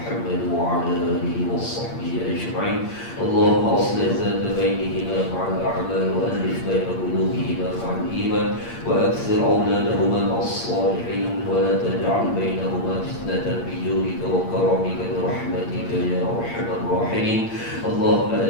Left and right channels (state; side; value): late; right; 8.7 ms